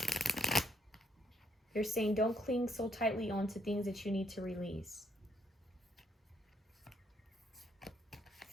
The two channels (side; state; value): both; normal; correlation 0.70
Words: They're saying don't cling so tightly onto things that you need to release.